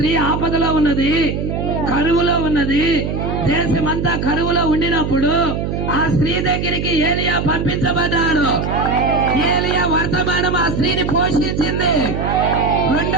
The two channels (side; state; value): right; noise; hum, 3 dB below the sound